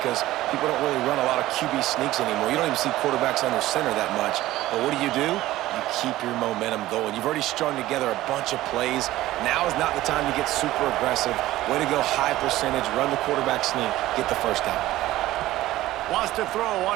people don't really run a lot of QB sneaks anymore. You don't even see quarterbacks under center that much. But what do? You keep your momentum going. You've already strung together a bunch of plays. Now is not the time to get super aggressive. Way to go high percentage, run the quarterback sneak, get the first down. Wants to throw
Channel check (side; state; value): left; quieter; 15.9 dB